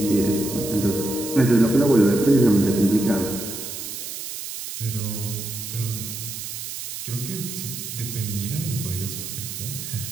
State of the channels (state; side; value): noise; right; hiss, 8 dB below the sound